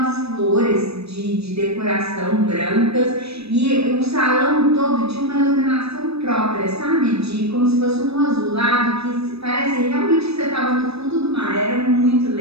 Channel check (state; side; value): late; left; 0.78 ms